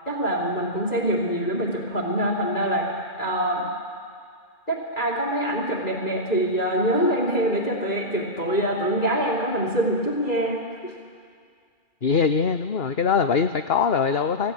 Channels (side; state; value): right; late; 2.4 ms